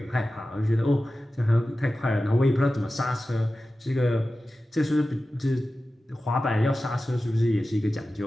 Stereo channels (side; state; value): both; normal; correlation 0.94